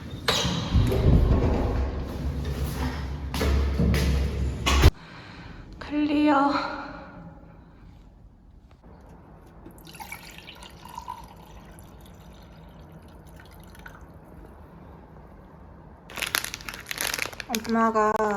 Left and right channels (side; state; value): both; identical; correlation 1.00